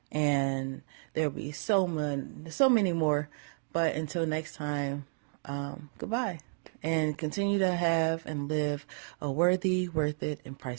And there'll be so many more. But until next time, goodbye. And continue to have and live a worthy, worth it, and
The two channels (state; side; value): silent; left; digital silence